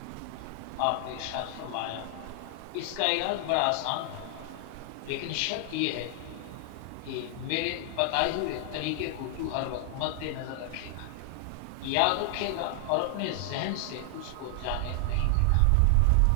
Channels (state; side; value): different; both; correlation 0.00